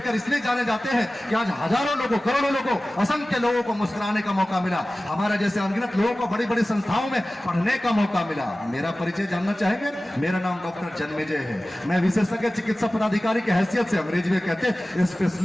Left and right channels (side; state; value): both; normal; correlation 0.96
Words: इसलिए जाने जाते हैं कि आज हजारों लोगों, करोड़ों लोगों, असंख्य लोगों को मुस्कुराने का मौका मिला। हमारे जैसे अनगिनत लोगों को बड़ी बड़ी संस्थाओं में पढ़ने का मौका मिला। मेरा परिचय जानना चाहेंगे? मेरा नाम डॉक्टर जन्मेजय है। मैं विशेषज्ञ चिकित्सा पदाधिकारी की हैसियत से, अंग्रेजी में कहते हैं